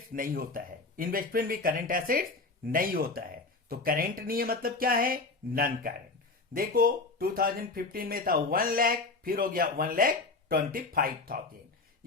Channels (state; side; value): quieter; right; 3.6 dB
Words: नहीं होता है, इन्वेस्टमेंट भी करंट एसेट्स नहीं होता है। तो करंट नहीं है मतलब क्या है, नॉन करंट। देखो 2015 में था 1 लाख, फिर हो गया 1,25,000,